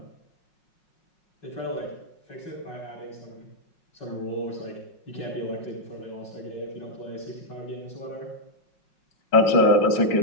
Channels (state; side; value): late; right; 5.5 ms